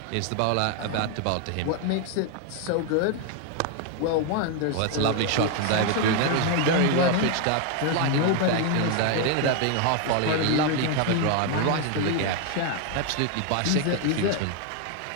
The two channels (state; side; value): different; both; correlation 0.01